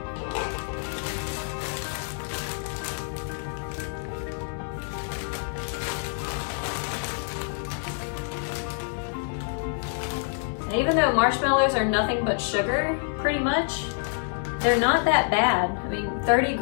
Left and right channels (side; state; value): right; silent; 60 dB below the other